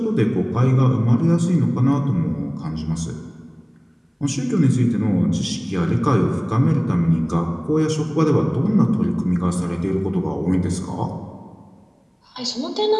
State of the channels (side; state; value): both; identical; correlation 1.00